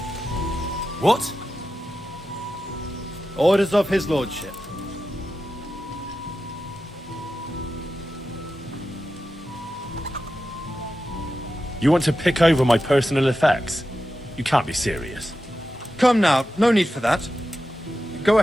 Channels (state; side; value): normal; both; correlation 0.91